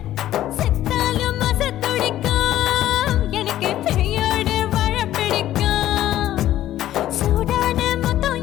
செத்தாலும் மச துடிக்கும் எனக்கு பெரியோடு வாழ பிடிக்கும் சூடான மொத்தம்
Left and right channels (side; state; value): right; quieter; 13.1 dB